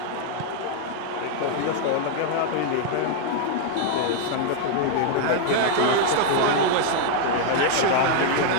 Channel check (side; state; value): both; different; correlation 0.00